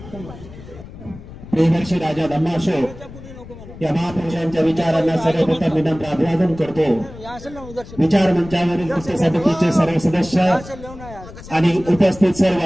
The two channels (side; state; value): left; noise; rumble, 16 dB below the sound